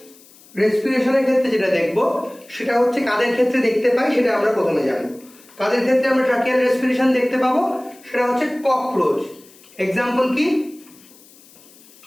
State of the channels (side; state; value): left; noise; hiss, 25 dB below the sound